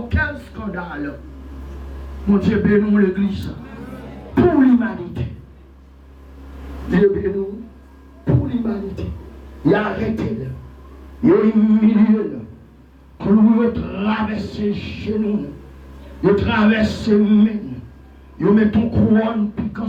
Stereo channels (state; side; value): identical; both; correlation 1.00